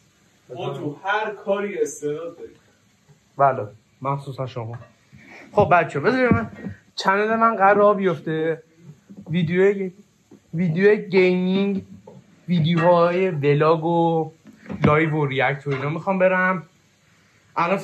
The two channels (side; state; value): both; identical; correlation 1.00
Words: ما تو هر کاری استعداد داریم. بله مخصوصا شما. خب بچه بذارید من چنل من قرار بیفته ویدیو گیمینگ، ویدیوهای ولاگ و لایو و ریاکت و اینا میخوام برم. الان